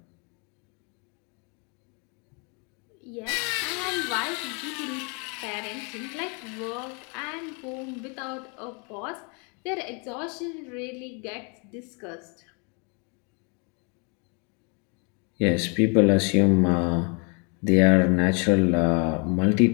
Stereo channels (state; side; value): quieter; right; 34.4 dB